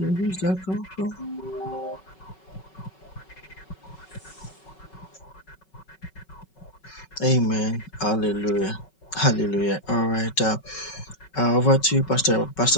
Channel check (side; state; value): right; late; 5.3 ms